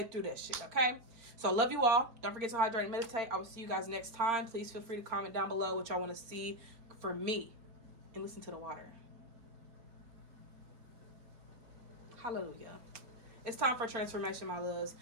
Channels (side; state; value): left; late; 4.4 ms